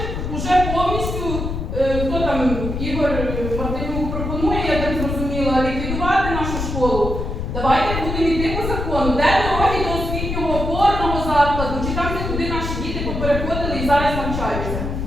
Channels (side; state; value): left; noise; rumble, 3 dB below the sound